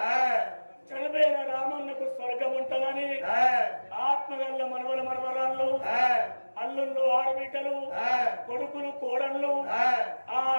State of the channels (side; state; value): both; inverted; correlation -1.00